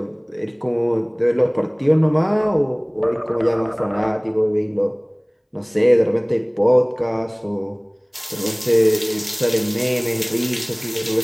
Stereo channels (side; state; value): both; identical; correlation 1.00